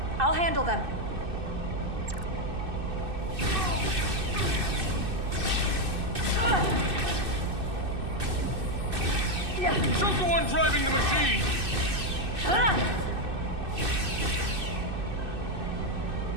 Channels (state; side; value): late; left; 2.6 ms